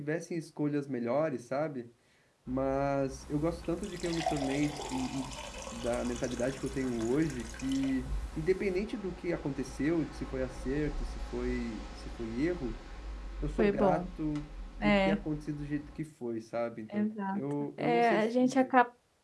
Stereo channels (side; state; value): both; identical; correlation 1.00